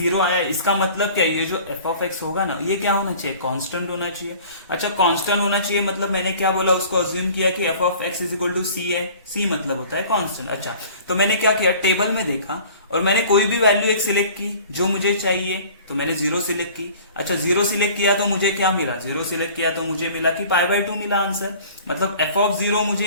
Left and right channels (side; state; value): both; inverted; correlation -0.47